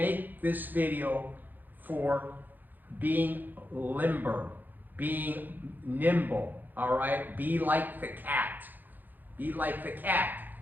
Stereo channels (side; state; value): left; late; 0.087 ms